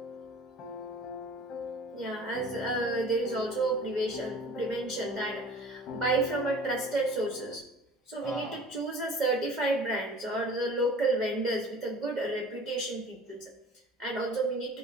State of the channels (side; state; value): both; normal; correlation 0.45